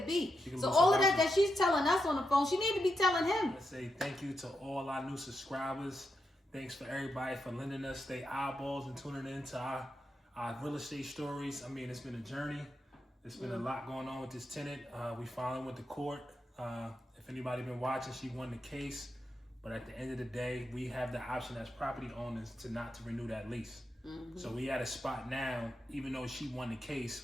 So all of that she's telling us on the phone, she need to be telling him. I say thank you to all our new subscribers. Thanks for everybody for lending us their eyeballs and tuning in to our real estate stories. I mean, it's been a journey. There's been a lot going on with this tenant. We finally went to court. If anybody been watching, she won the case. But at the end of the day, we have the option as property owners to renew that lease. So we at a spot now, even though she won the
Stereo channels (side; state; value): both; normal; correlation 0.85